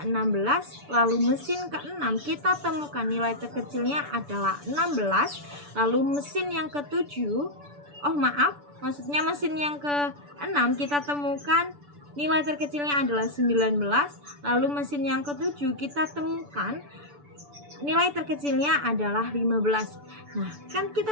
16. Lalu mesin keenam kita temukan nilai terkecilnya adalah 16. Lalu mesin yang ketujuh, maksudnya mesin yang keenam kita temukan nilai terkecilnya adalah 19. Lalu mesin yang ketujuh kita temukan nilai terkecilnya adalah 15. Nah, kan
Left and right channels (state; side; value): late; left; 6.9 ms